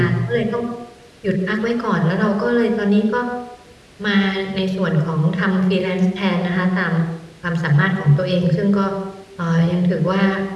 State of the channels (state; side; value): identical; both; correlation 1.00